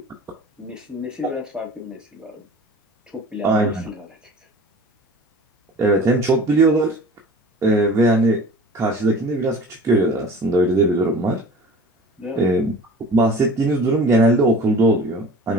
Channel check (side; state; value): both; normal; correlation 0.42